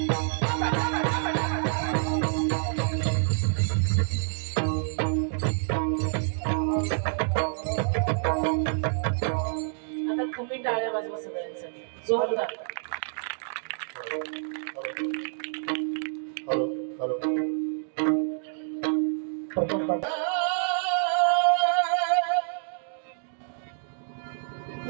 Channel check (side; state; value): left; silent; digital silence